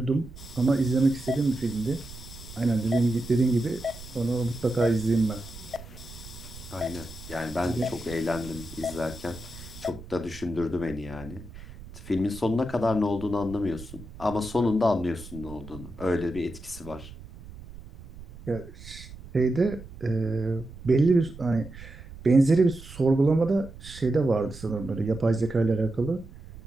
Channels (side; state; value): right; noise; rumble, 16 dB below the sound